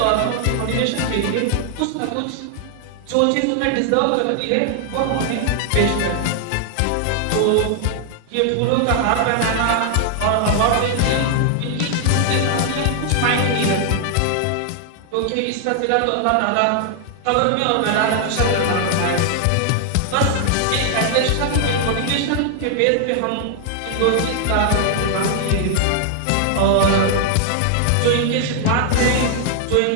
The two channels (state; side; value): different; both; correlation 0.00